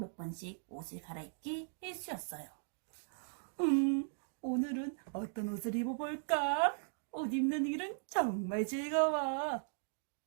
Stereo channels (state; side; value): silent; left; digital silence